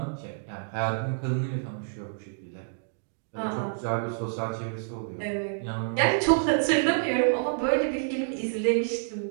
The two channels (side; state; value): left; silent; digital silence